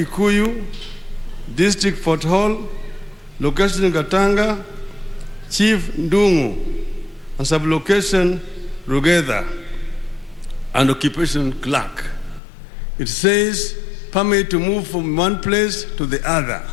district Fort Hall, location Gatanga, Chief Ndungu, and sublocation Rugedha, and occupation clerk. It says permit to move from one place to the other.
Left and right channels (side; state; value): right; drops out; at 12.4 s